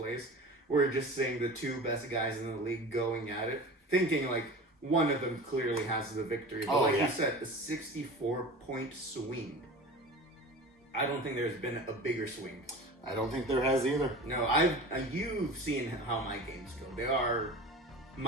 We're just seeing the 2 best guys in the league going at it, thinking like one of them clearly has the victory. But you said, a 64-point swing. I don't think there's been a bigger swing. I don't think there has either. No, you've seen how my games go.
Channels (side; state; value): both; normal; correlation 0.35